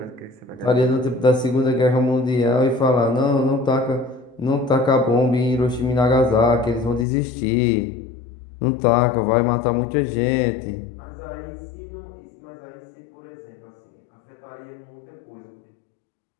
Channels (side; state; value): right; drops out; at 7.1 s